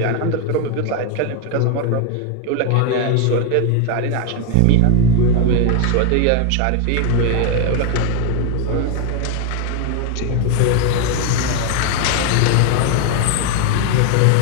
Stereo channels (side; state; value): both; different; correlation 0.01